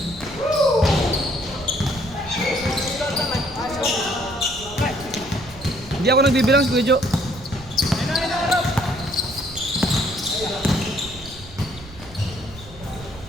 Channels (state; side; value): noise; right; rumble, 17 dB below the sound